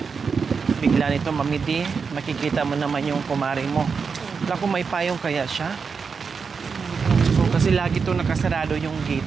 Bigla nito mamidi, makikita mo naman yung kumari mo. Wala kung may payong kaya siya. So, kasi lagi itong nakasarado yung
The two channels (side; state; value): left; quieter; 5.5 dB